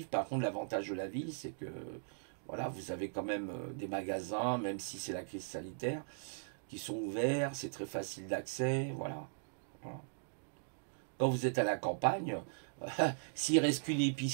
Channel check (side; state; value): left; silent; digital silence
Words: Par contre, l'avantage de la ville, c'est que voilà, vous avez quand même des magasins, même si c'est la crise sanitaire, qui sont ouverts, c'est très facile d'accès, voilà. Voilà. Quand vous êtes à la campagne, s'il reste qu'une